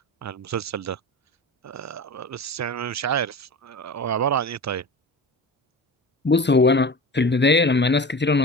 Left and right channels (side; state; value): both; normal; correlation 0.33